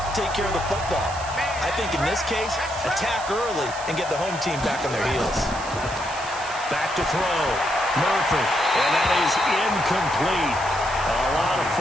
take care of the football. I think in this case, attack early and get the home team back on their heels. Back to throw. Murphy, and that is incomplete. A lot of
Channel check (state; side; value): noise; right; hiss, 13 dB below the sound